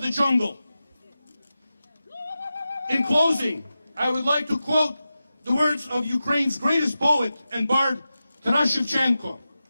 the jungle. In closing, I would like to quote the words of Ukraine's greatest poet and bard, Taras Shevchenko.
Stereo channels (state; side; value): inverted; both; correlation -0.93